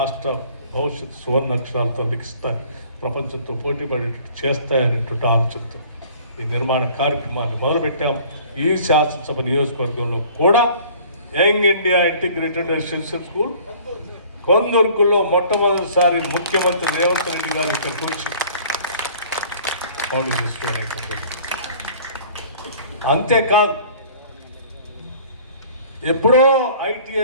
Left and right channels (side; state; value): both; inverted; correlation -0.51